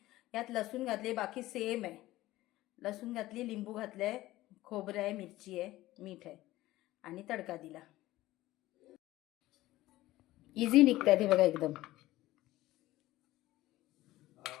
यात लसूण घातले. बाकी सेम आहे. लसूण घातली, लिंबू घातलंय, खोबरं आहे, मिरची आहे, मीठ आहे आणि तडका दिला. इझी निघतात हे बघा एकदम.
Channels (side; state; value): right; quieter; 16.7 dB